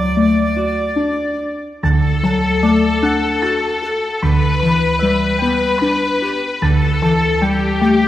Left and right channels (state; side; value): normal; both; correlation 0.90